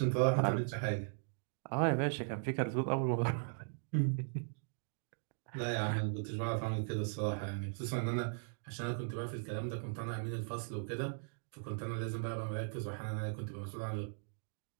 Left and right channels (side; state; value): left; silent; digital silence